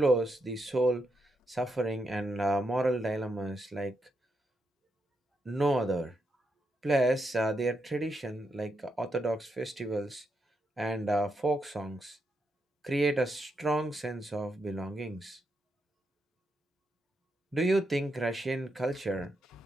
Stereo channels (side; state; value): both; normal; correlation 0.82